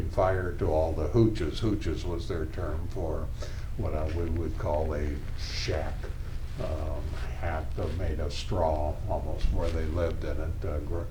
fire to all the hooches. Hooches was their term for what we would call a shack, hat made of straw, almost where they lived in it,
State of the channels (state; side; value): identical; both; correlation 1.00